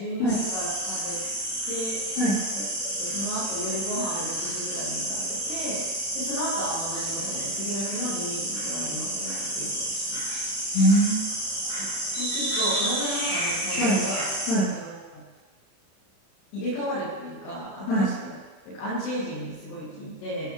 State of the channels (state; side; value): late; right; 36 ms